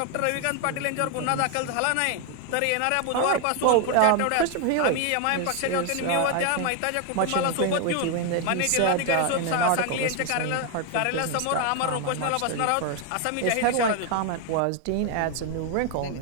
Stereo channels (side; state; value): both; different; correlation 0.01